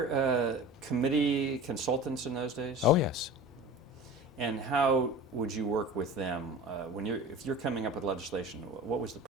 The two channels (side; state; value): both; normal; correlation 0.37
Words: committee consultants in those days? Oh, yes. And how would you work with them if you're coming up with legislation? What was the